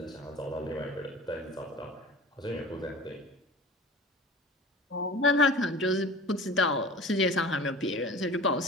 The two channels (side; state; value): both; normal; correlation 0.39